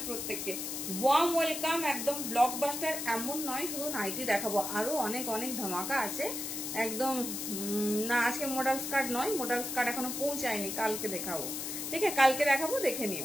প্রত্যেককে। Warm welcome. একদম ব্লকবাস্টার এমন নয় শুধু নাইটি দেখাবো, আরো অনেক অনেক ধামাকা আছে একদম। না আজকে মডেল স্কার্ট নয়, মডেল স্কার্ট এখনো পৌঁছায়নি, কালকে দেখাবো। ঠিক আছে কালকে দেখাবো, দেখে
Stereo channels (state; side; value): noise; left; hiss, 5 dB below the sound